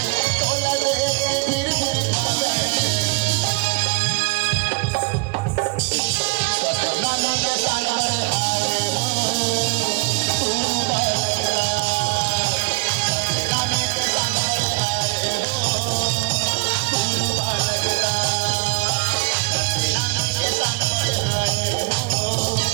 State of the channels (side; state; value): left; quieter; 29.6 dB